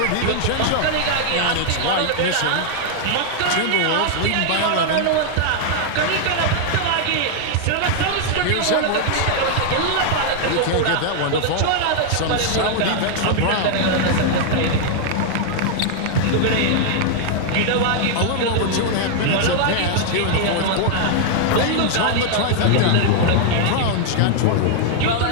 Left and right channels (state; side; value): different; both; correlation 0.00